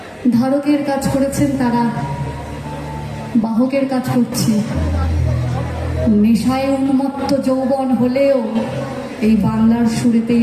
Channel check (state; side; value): identical; both; correlation 1.00